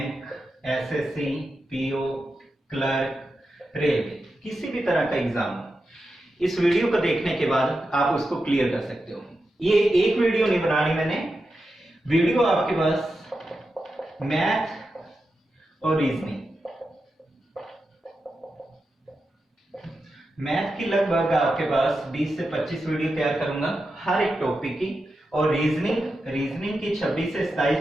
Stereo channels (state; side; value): normal; both; correlation 0.89